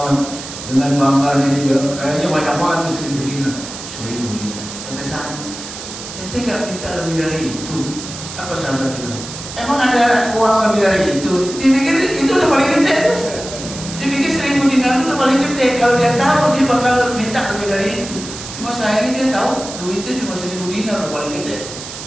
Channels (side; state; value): right; noise; hiss, 11 dB below the sound